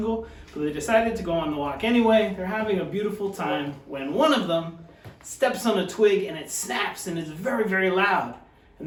but they decided to go on the walk anyway. They're having a beautiful time when one of them steps on a twig and it snaps and is very, very loud.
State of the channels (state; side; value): identical; both; correlation 1.00